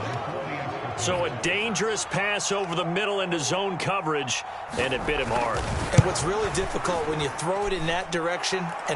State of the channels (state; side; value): identical; both; correlation 1.00